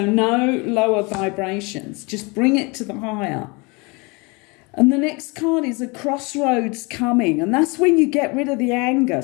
no lower vibrations. Just bring it to the higher. And the next card is a crossroads coming. And that's when you get rid of the anger.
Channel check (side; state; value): right; quieter; 28.3 dB